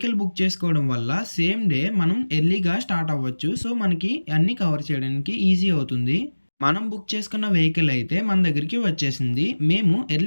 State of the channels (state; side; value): inverted; both; correlation -1.00